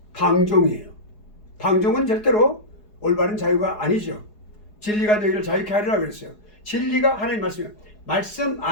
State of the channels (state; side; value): late; right; 4.8 ms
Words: 방종이에요. 방종은 절대로 올바른 자유가 아니죠. 진리가 너희를 자유케 하리라 그랬어요. 진리가 하나님 말씀이에요. 말씀